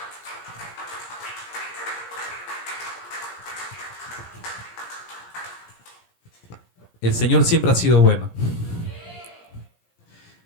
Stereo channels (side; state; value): right; late; 17 ms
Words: El Señor siempre ha sido bueno.